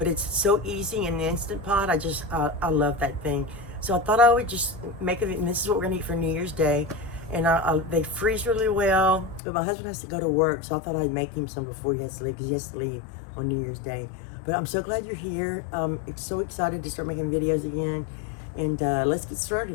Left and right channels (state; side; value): drops out; right; at 9.4 s